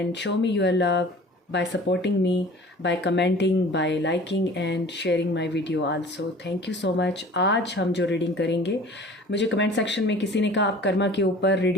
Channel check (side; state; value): both; normal; correlation 0.45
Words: show me your love by supporting me, by commenting, by liking and sharing my video also. Thank you so much. आज हम जो रीडिंग करेंगे, मुझे कमेंट सेक्शन में किसी ने कहा आप कर्मा के ऊपर